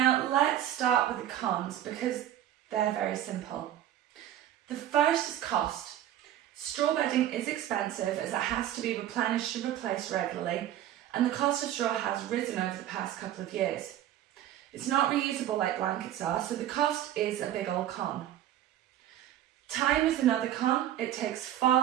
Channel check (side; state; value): left; quieter; 12.0 dB